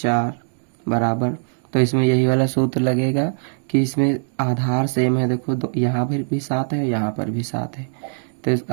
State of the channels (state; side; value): silent; left; digital silence